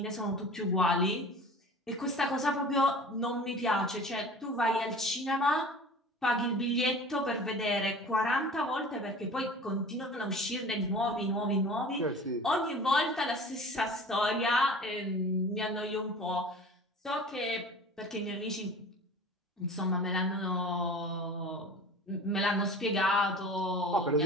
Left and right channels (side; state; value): both; normal; correlation 0.41